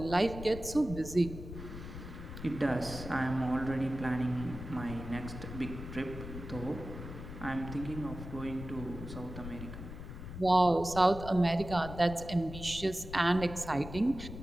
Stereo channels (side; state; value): left; noise; rumble, 10 dB below the sound